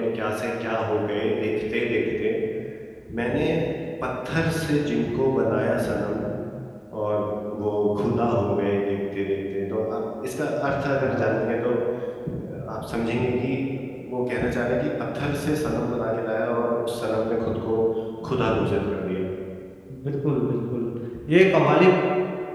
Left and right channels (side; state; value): both; identical; correlation 1.00